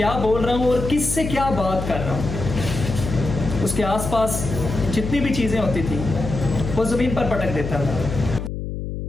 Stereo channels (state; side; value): noise; left; hum, 6 dB below the sound